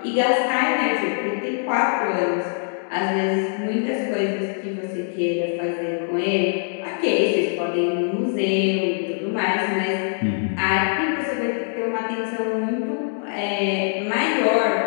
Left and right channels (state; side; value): silent; right; digital silence